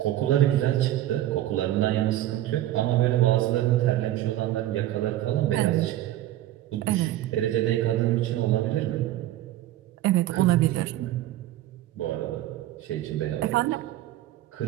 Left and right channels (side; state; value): left; quieter; 13.9 dB